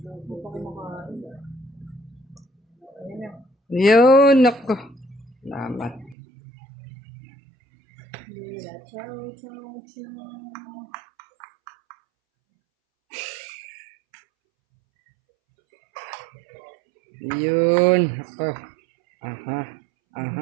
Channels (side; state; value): left; drops out; at 6.2 s